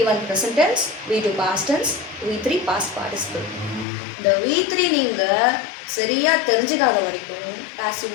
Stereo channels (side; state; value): right; drops out; at 3.9 s